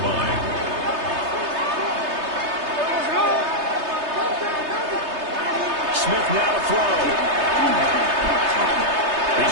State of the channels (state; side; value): late; left; 3.3 ms